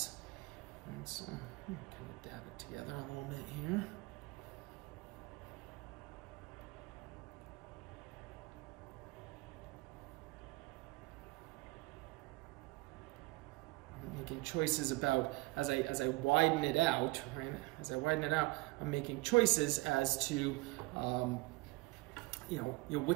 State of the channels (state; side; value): quieter; left; 23.0 dB